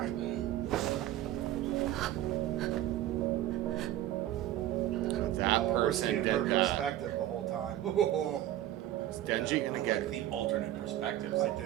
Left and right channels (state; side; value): quieter; left; 13.4 dB